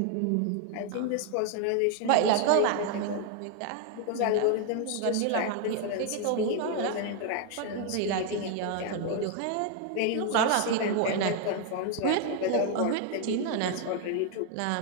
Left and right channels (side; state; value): both; different; correlation 0.00